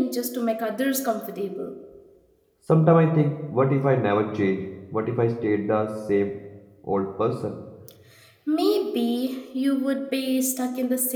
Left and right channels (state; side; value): identical; both; correlation 1.00